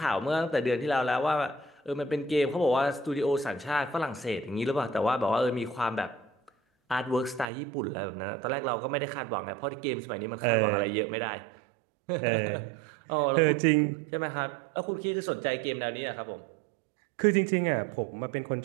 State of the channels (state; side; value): drops out; left; at 7.5 s